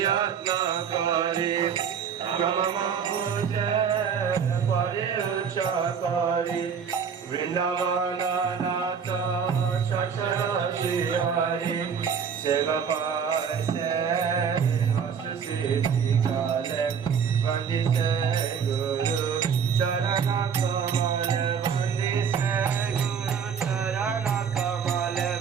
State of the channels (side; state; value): left; quieter; 6.9 dB